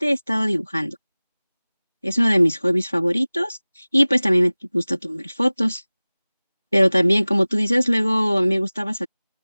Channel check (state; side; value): inverted; both; correlation -0.99